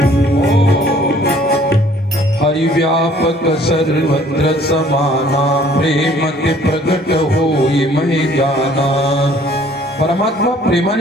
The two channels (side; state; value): both; normal; correlation 0.57